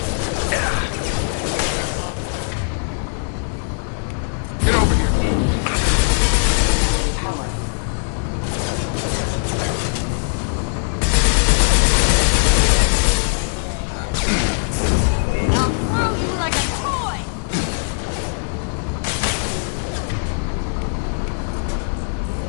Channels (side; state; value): right; silent; digital silence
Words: I'll throw you like a toy!